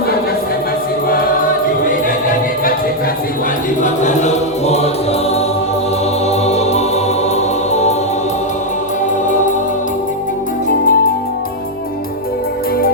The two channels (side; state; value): left; noise; hum, 24 dB below the sound